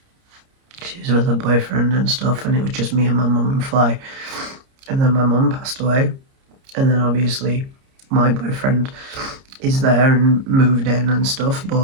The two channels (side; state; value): left; late; 30 ms